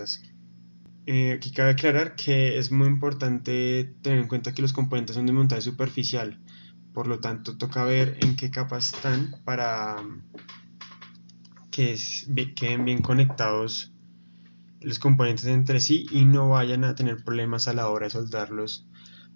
Aquí cabe aclarar que es muy importante tener en cuenta que los componentes son de montaje superficial, por lo tanto toca ver en qué capa están para que queden bien conectados los componentes entre sí y no vayan a tener problemas a la hora de soldarlos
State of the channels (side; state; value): both; inverted; correlation -1.00